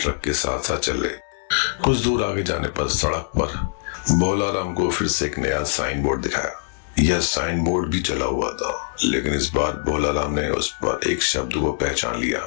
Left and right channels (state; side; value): silent; right; digital silence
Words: के साथ साथ चल रहे। कुछ दूर आगे जाने पर सड़क पर भोला राम को फिर से एक नया साइन बोर्ड दिखाया। यह साइन बोर्ड भी जला हुआ था, लेकिन इस बार भोला राम ने उस पर एक शब्द को पहचान लिया।